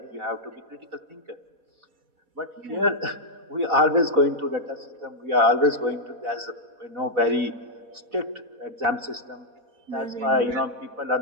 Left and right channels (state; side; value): late; left; 4.1 ms